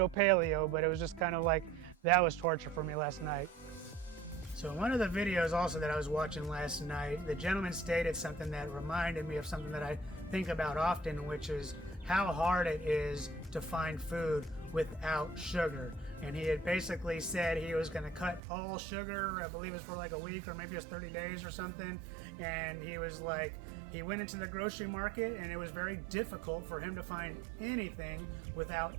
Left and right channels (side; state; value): left; drops out; at 18.4 s